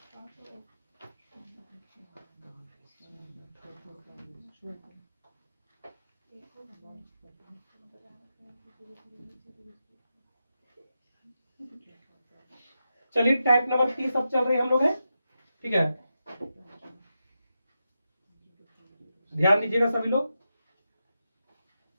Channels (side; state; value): both; inverted; correlation -0.88